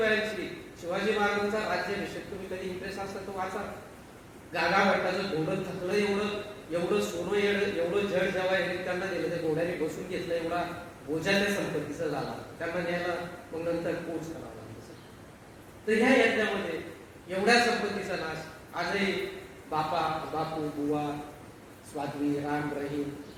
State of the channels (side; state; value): both; identical; correlation 1.00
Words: शिवाजी महाराजांचा राज्याभिषेक, तुम्ही कधी इंटरेस्ट असला तो वाचा. गागा भट्टाचं घोडं थकलं, एवढं सोनं एवढं जड जेव्हा त्यांना दिलं, त्या घोड्याने बसून घेतलं, एवढा बोजा त्या संपत्तीचा झाला. त्यांना न्यायला मग नंतर कोच करावा लागला. तर ह्या यज्ञामध्ये एवढ्या संपत्तीचा नाश आजही बापू, बुवा, स्वाध्वी, राम, रहीम,